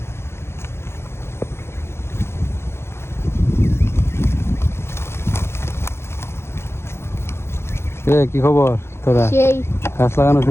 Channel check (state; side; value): late; right; 0.12 ms